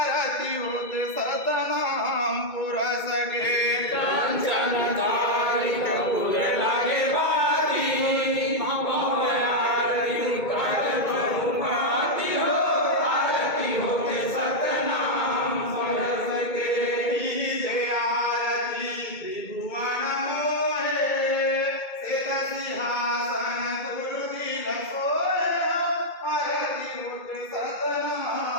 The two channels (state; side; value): late; right; 2.2 ms